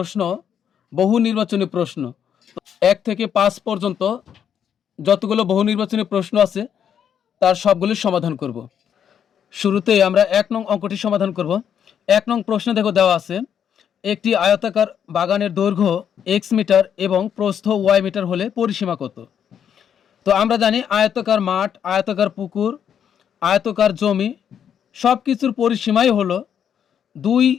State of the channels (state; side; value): quieter; right; 8.6 dB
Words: বহু নির্বাচনী প্রশ্ন। ১ থেকে ৫ পর্যন্ত যতগুলো বহু নির্বাচনী প্রশ্ন আছে তার সবগুলির সমাধান করব। শুরুতেই আমরা ১ নং অঙ্কটি সমাধান করব। ১ নং প্রশ্নে দেখো দেওয়া আছে একটি আয়তাকার বাগানের দৈর্ঘ্য x মিটার এবং প্রস্থ y মিটার হলে পরিসীমা কত? তো আমরা জানি আয়তাকার মাঠ, আয়তাকার পুকুর, আয়তাকার জমি সব কিছুর পরিসীমাই হলো ২